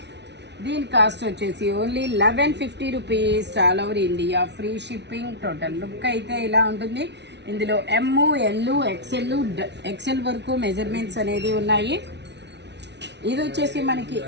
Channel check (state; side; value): late; left; 0.50 ms